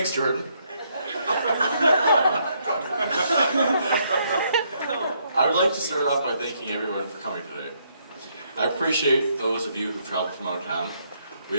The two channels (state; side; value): inverted; both; correlation -0.73